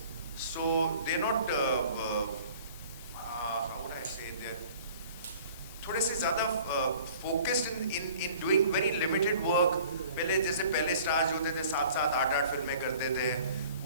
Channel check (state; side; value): inverted; both; correlation -0.50